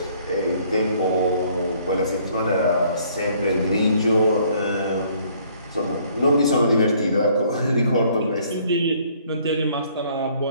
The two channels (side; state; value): both; inverted; correlation -0.62